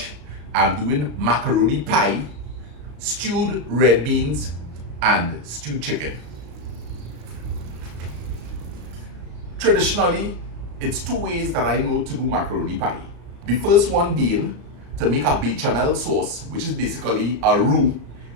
I'm doing macaroni pie, stewed red beans, and stewed chicken. Traditionally, it's two ways that I know to do macaroni pie. The first one being to make a bechamel sauce, which is basically a roux,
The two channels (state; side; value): late; left; 35 ms